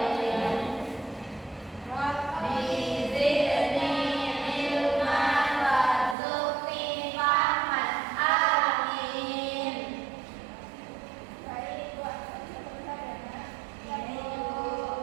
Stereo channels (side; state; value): left; drops out; at 6.2 s